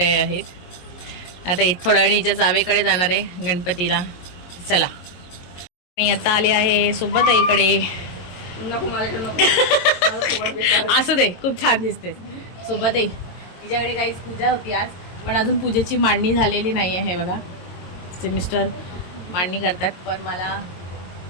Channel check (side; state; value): right; late; 22 ms